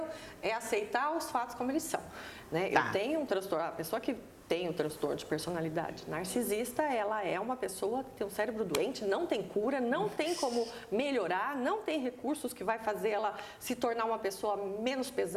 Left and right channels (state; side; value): identical; both; correlation 1.00